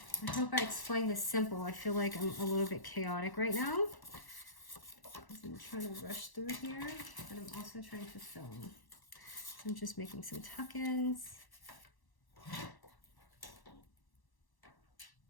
I hope I explained this simple. I feel like I'm a little bit chaotic right now, because I'm trying to rush through here, but I'm also trying to film. So I'm just making some tuck-ins.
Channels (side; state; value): right; late; 1.0 ms